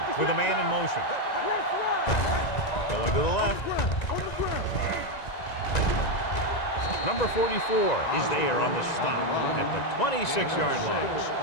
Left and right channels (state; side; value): late; right; 1.9 ms